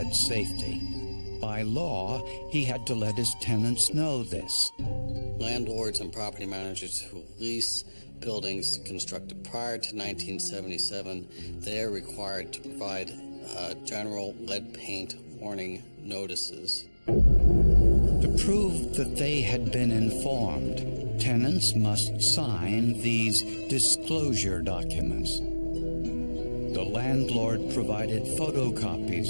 safety. By law, he had to let his tenants know this. Landlords and property managers who lease buildings constructed prior to 1977, they are required to provide general lead paint warning notices. To prove that they had been informed, tenants must sign these disclosure documents. The landlord provided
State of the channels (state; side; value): inverted; both; correlation -1.00